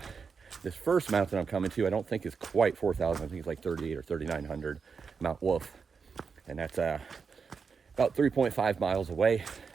this first mountain I'm coming to, I don't think is quite 4000. I think it's like 38 or 3900, Mount Wolf. And that's about 3.5 miles away,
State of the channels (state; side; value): quieter; left; 5.6 dB